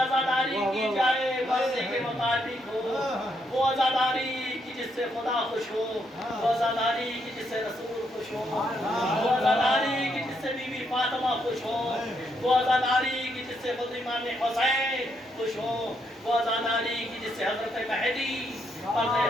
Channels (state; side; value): normal; both; correlation 0.76